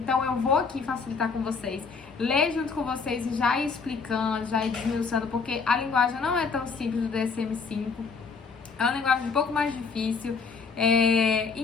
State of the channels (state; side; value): quieter; right; 5.0 dB